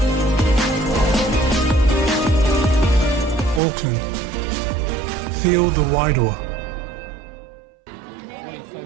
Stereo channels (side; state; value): left; drops out; at 3.6 s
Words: Auckland, feel the Wairoa.